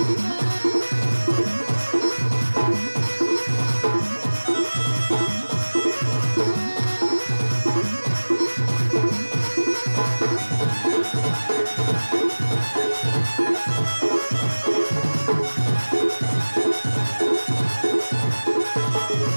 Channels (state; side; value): inverted; both; correlation -1.00